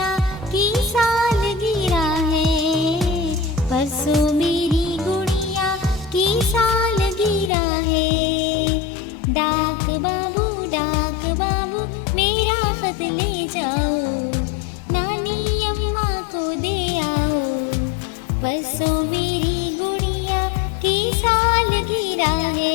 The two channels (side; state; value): right; drops out; at 7.5 s